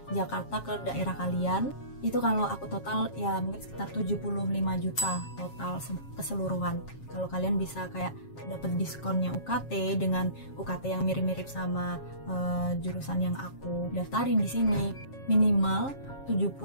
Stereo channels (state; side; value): late; right; 7.3 ms